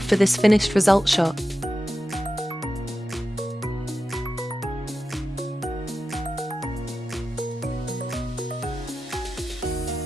this finished result shot.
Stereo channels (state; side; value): normal; both; correlation 0.92